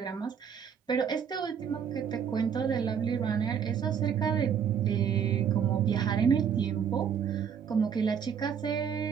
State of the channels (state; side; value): quieter; left; 7.7 dB